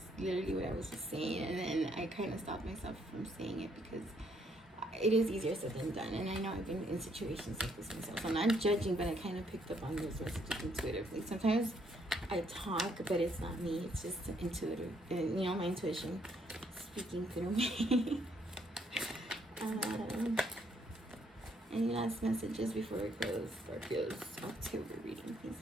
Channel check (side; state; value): both; normal; correlation 0.70